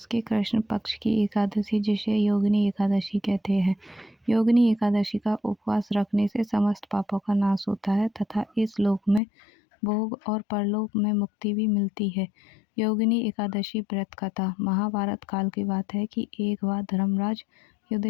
के कृष्ण पक्ष की एकादशी जिसे योगिनी एकादशी कहते हैं। योगिनी एकादशी का उपवास रखने से समस्त पापों का नाश होता है तथा इस लोक में भोग और परलोक में मुक्ति भी मिलती है। योगिनी एकादशी व्रत कथा। महाभारत काल की बात है कि एक बार धर्मराज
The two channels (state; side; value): drops out; right; at 9.2 s